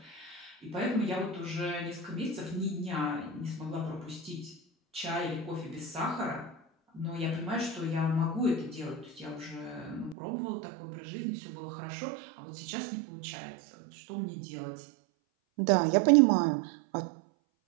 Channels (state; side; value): drops out; left; at 10.2 s